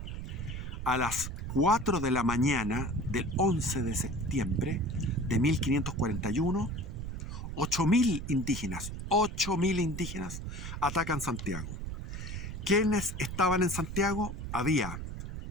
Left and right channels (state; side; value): noise; right; rumble, 6 dB below the sound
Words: a las 4 de la mañana del 11 de septiembre de 1541, 8.000 indígenas atacan Santiago. ¿Quiénes estaban en Santiago? Había